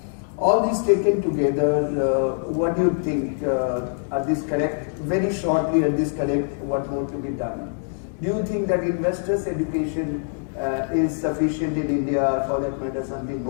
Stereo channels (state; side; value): silent; right; digital silence